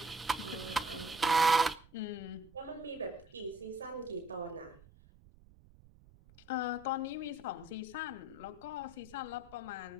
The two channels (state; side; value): noise; right; rumble, 24 dB below the sound